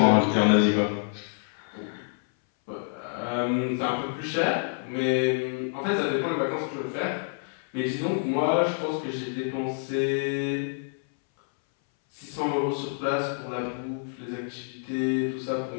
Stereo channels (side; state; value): right; silent; 60 dB below the other